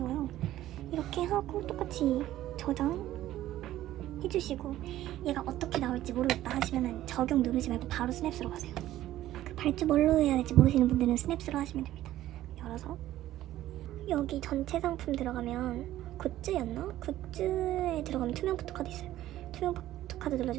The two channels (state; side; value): quieter; left; 14.0 dB